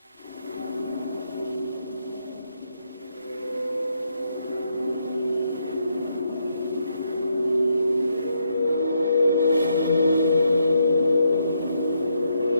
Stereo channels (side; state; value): both; inverted; correlation -0.77